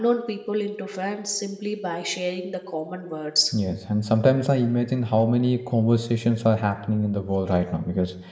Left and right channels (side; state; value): both; identical; correlation 1.00